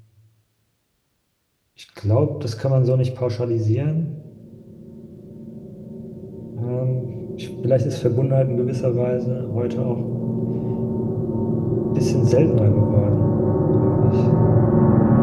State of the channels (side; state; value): both; identical; correlation 1.00